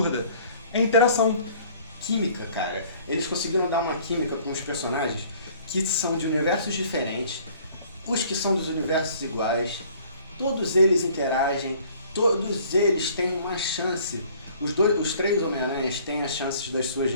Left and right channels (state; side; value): inverted; both; correlation -0.54